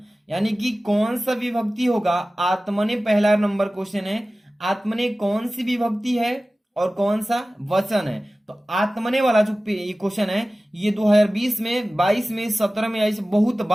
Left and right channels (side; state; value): both; normal; correlation 0.96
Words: यानी कि कौन सा विभक्ति होगा, आत्मने पहला नंबर क्वेश्चन है। आत्मने कौन सी विभक्ति है और कौन सा वचन है। तो आत्मने वाला जो क्वेश्चन है, ये 2020 में, 22 में, 17 में ऐसे बहुत